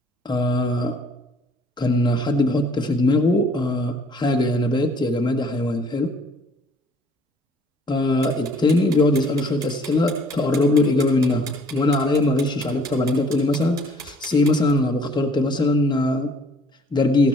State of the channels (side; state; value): both; normal; correlation 0.58